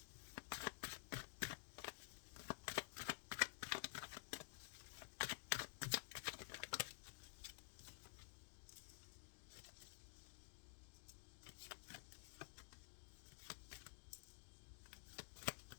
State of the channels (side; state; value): right; silent; digital silence